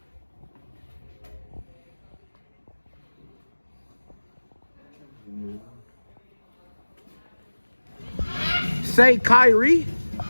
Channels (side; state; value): both; inverted; correlation -1.00